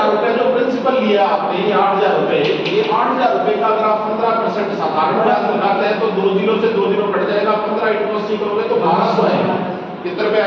रुपए जो प्रिंसिपल लिया आपने, ये 8000 रुपए, ये 8000 रुपए का अगर आप 15% साधारण ब्याज लगाते हैं तो 2 जीरो से 2 जीरो कट जाएगा, 15 इंटू 80 करोगे तो 1200 आएगा। कितने रुपए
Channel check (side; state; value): both; identical; correlation 1.00